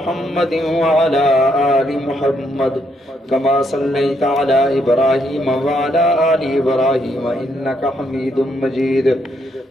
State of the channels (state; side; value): normal; both; correlation 0.75